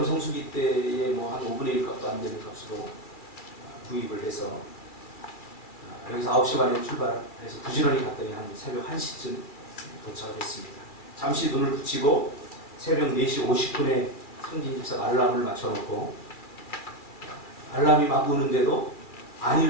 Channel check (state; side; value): late; right; 2.3 ms